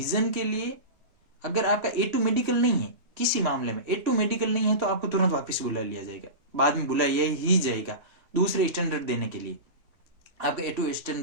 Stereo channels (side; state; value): left; late; 3.0 ms